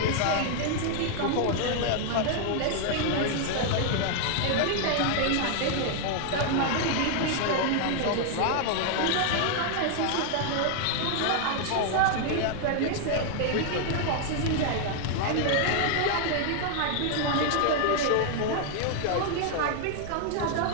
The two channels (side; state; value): both; different; correlation 0.00